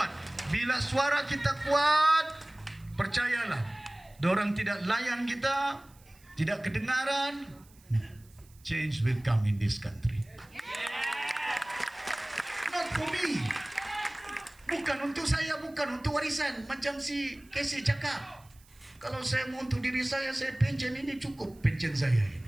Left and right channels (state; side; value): noise; right; hiss, 28 dB below the sound